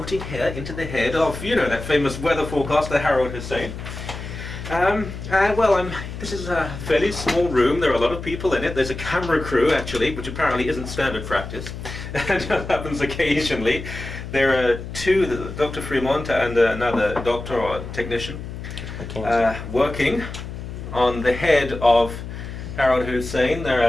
hair into the head of, you know, that famous weather forecaster, Harold Hussein. This is a fairly small room. There are a lot of people in it. There's a camera crew, actually, which apparently isn't standard practice. And that happens occasionally. There are two, Dr. Fremont and another doctor or technician, working on the head of Harold Hussein. There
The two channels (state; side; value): noise; left; hum, 9 dB below the sound